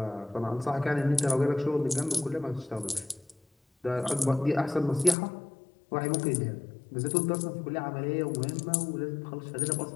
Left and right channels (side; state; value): right; drops out; at 5.2 s